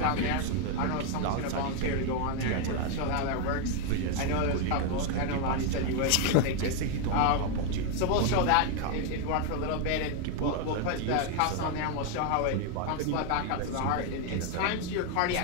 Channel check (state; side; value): different; both; correlation 0.01